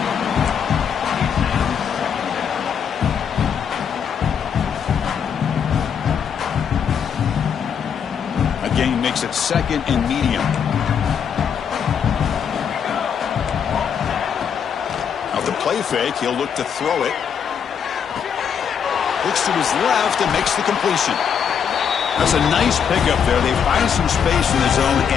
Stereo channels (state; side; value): quieter; right; 7.5 dB